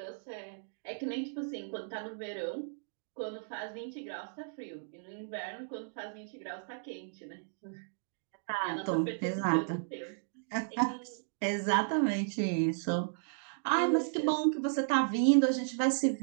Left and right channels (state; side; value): silent; left; digital silence